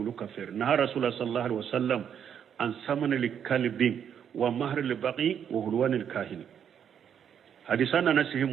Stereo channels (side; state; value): left; quieter; 8.5 dB